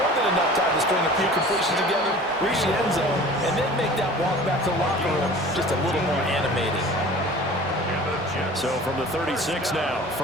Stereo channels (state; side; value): normal; both; correlation 0.43